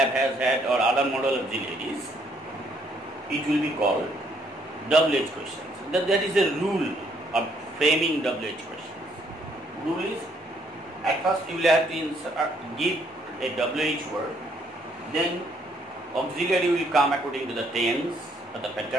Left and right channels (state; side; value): normal; both; correlation 0.68